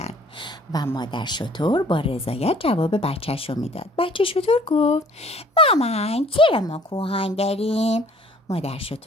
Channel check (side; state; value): both; normal; correlation 0.55